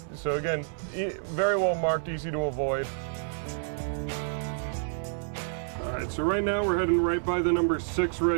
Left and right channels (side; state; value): left; silent; digital silence